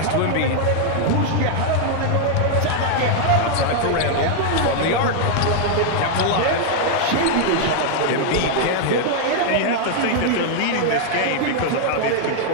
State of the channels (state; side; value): different; both; correlation 0.00